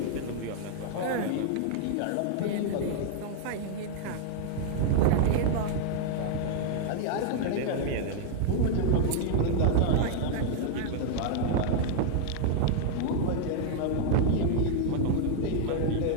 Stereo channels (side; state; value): both; different; correlation 0.00